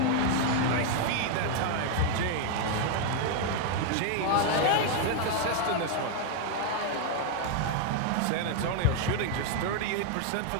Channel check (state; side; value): different; both; correlation 0.00